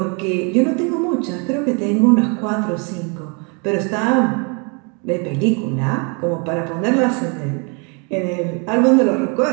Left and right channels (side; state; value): left; quieter; 34.5 dB